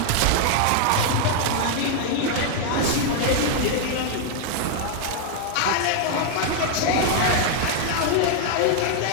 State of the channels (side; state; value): both; different; correlation 0.00